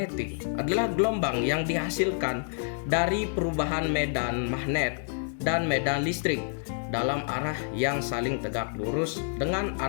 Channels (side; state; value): right; silent; digital silence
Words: adalah gelombang yang dihasilkan dari perubahan medan magnet dan medan listrik dalam arah yang saling tegak lurus dengan